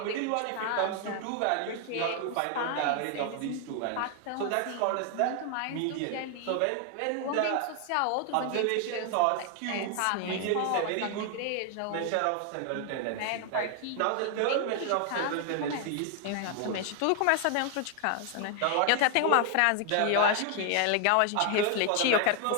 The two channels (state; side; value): different; both; correlation 0.00